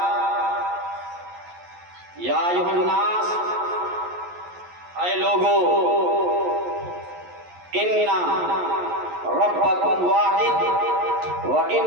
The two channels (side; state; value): left; late; 11 ms